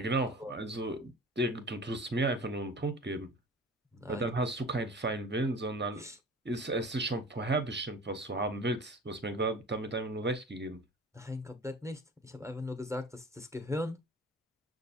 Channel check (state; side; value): normal; both; correlation 0.41